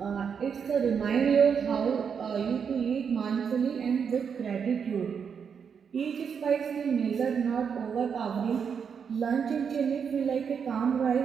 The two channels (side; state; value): left; quieter; 6.8 dB